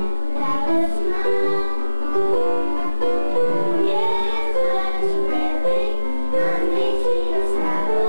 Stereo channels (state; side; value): inverted; both; correlation -1.00